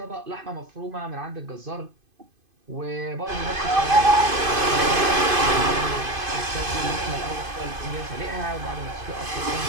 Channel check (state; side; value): late; left; 2.5 ms